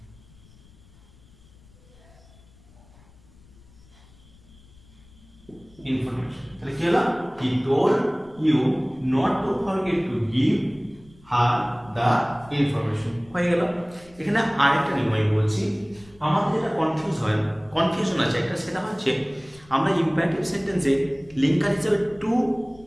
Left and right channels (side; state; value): left; noise; rumble, 26 dB below the sound